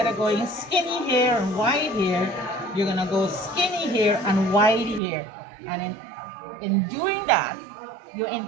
of going skinny here and wide here, you're gonna go skinny here and wide here. And in doing that, you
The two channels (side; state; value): left; drops out; at 5.0 s